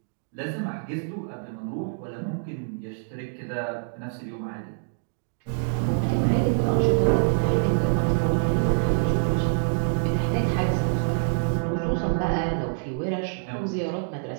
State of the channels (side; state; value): left; silent; digital silence